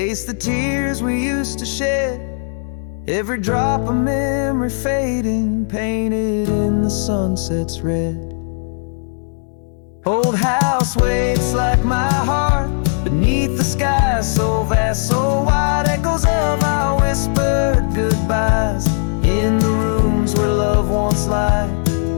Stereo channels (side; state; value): right; silent; 67 dB below the other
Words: the tears we used to shed. Every drop of memory fading, painted in the sunset's red. Old house waits like my heart beneath the sky so vast, so wide. Echoes of our whispered goodbyes in the rooms where love once lied.